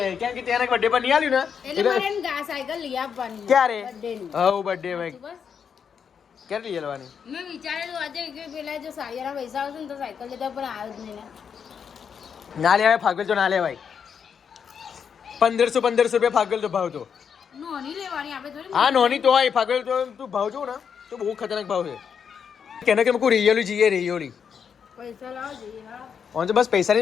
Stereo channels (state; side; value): quieter; right; 7.1 dB